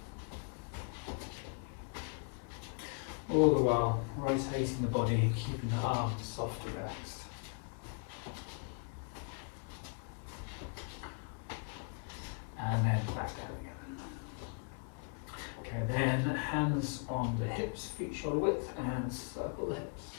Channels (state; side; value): quieter; right; 38.6 dB